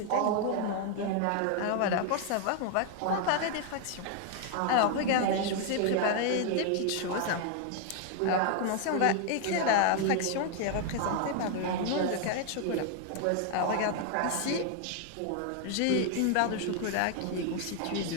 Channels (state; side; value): different; both; correlation 0.00